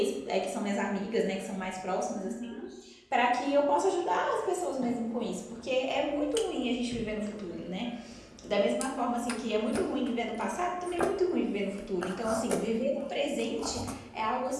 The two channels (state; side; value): identical; both; correlation 1.00